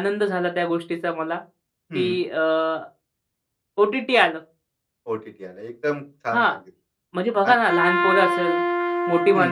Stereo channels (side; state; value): both; identical; correlation 1.00